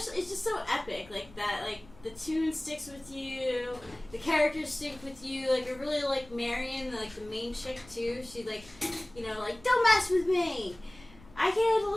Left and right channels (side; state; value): left; noise; rumble, 23 dB below the sound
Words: it's just so epic, like that. Like the tune sticks with you, the characters stick with you. Like I really like Marion, like the main chick too. She like, like don't mess with me. I can